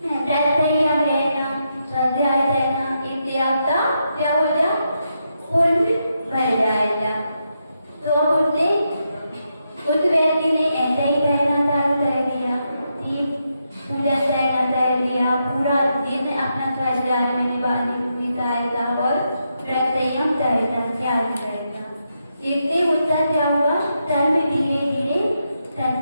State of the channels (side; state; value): both; inverted; correlation -0.83